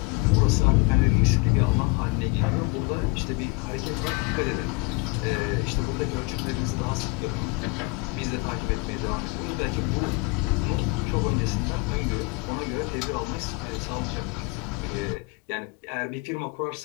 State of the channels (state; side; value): quieter; right; 26.8 dB